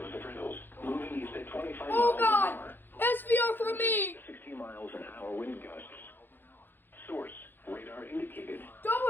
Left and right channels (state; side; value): late; right; 0.097 ms